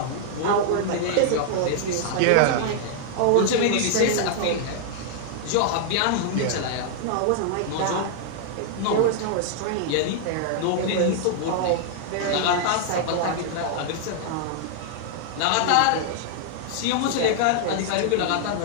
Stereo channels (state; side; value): different; both; correlation -0.01